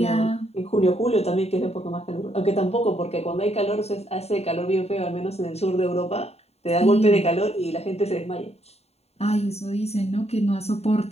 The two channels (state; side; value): late; right; 0.30 ms